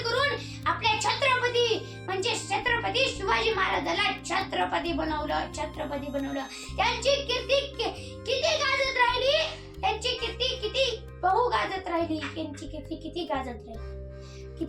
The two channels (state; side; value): identical; both; correlation 1.00